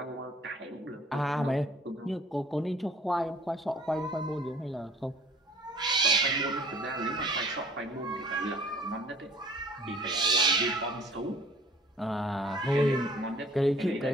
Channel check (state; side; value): normal; both; correlation 0.53